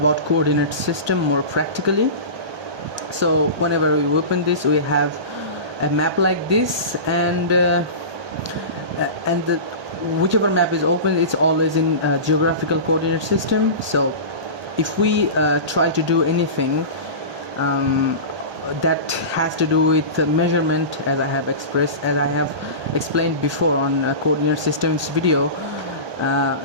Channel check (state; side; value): late; left; 1.2 ms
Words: coordinate system more practically. So whenever we open this, we have a map like this, and whichever map is open, it's always in geographical coordinate system. So if we try to do anything that has to do with measurement, as I have explained before on coordinate systems video,